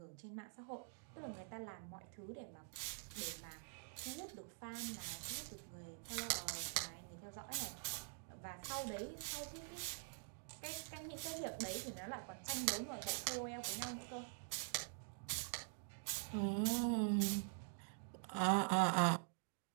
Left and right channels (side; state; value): left; silent; digital silence